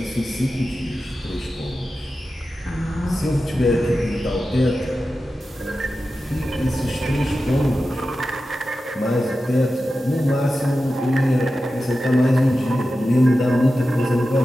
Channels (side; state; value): both; normal; correlation 0.93